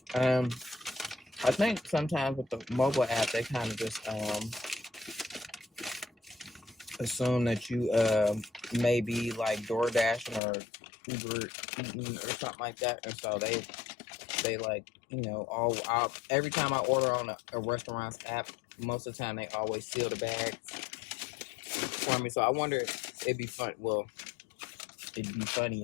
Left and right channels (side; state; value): right; drops out; at 10.4 s